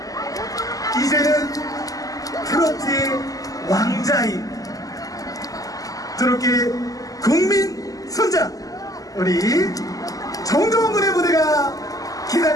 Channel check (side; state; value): right; late; 0.17 ms